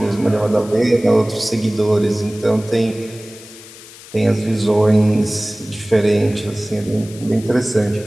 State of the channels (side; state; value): left; noise; hiss, 19 dB below the sound